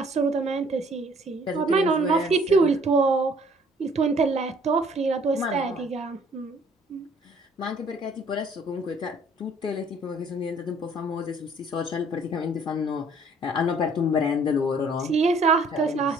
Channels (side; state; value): both; normal; correlation 0.58